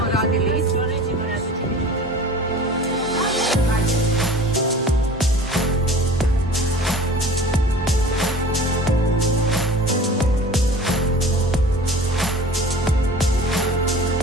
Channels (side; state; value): both; normal; correlation 0.42